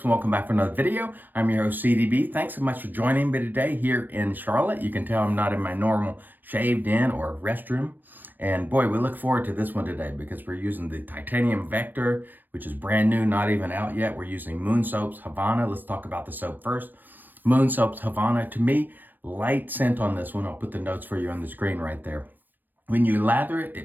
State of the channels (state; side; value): late; left; 0.087 ms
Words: and welcome back for another video. I'm your host CDB. Thanks so much for joining me today here in Charlotte. You can tell I'm not in my normal shaved in or restroom. And boy, we look forward to this one today because we're using the titanium Vector, which is brand new, not even out yet. We're using Moon Soap's Havana. Let's talk about the soap first. Moon Soap's Havana, to me, light scent on this one. I'll put the notes for you on the screen right there. When you lather it,